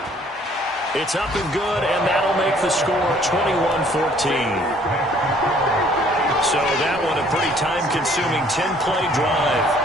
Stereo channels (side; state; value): both; normal; correlation 0.59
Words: It's up and good, and that'll make the score 21-14. So that one a pretty time-consuming 10-play drive.